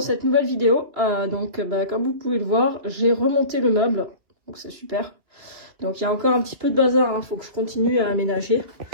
cette nouvelle vidéo. Comme vous pouvez le voir, j'ai remonté le meuble, donc c'est super. Donc il y a encore un petit peu de bazar, hein, faut que je continue à aménager.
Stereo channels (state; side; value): late; left; 3.0 ms